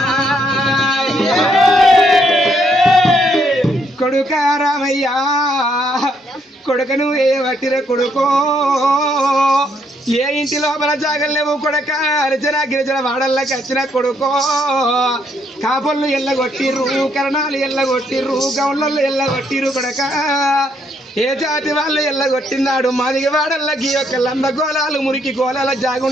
కొడుక రామయ్యా, కొడుకను ఏ వట్టిర కొడుకో, ఏ ఇంటి లోపల జాగలేవు కొడక, అర్జన గిరిజన వాడల్లోకి వచ్చిన కొడుకో. కాపుళ్ళు ఎల్లగొట్టిర్రు, కరణాలు ఎల్లగొట్టిర్రు, గౌళ్ళల్లో ఎల్లగొట్టిర్రు కొడక. ఏ జాతి వాళ్ళు ఎల్లగొట్టిందాడు మాదిగ వాడల్లకి యొక్క లంద గోళాలు మురికి గోళాల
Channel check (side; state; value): both; normal; correlation 0.72